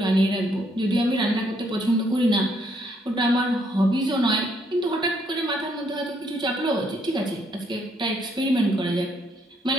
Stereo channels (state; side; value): normal; both; correlation 0.71